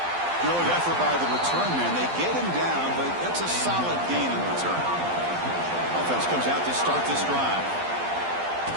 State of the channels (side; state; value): left; late; 12 ms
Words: Good effort by the return man. They get him down, but that's a solid gain in return. Offense comes out to start this drive.